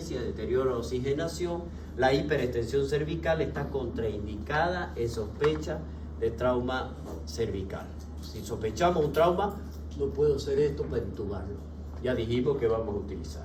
deterioro de la oxigenación, la hiperextensión cervical está contraindicada en sospecha de trauma cervical. Si sospechamos un trauma, no puedo hacer esto para intubarlo. Ya dijimos que vamos a utilizar.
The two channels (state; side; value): identical; both; correlation 1.00